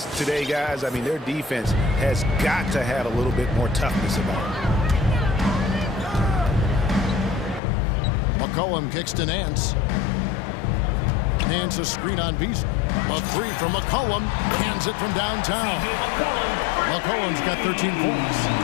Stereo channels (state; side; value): drops out; right; at 7.6 s